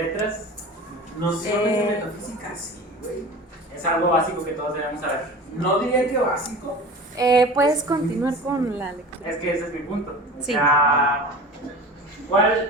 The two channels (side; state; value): both; normal; correlation 0.36